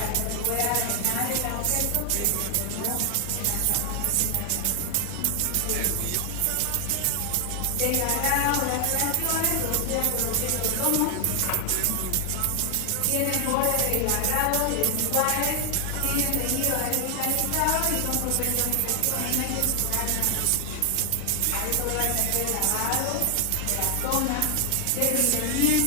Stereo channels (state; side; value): different; both; correlation 0.00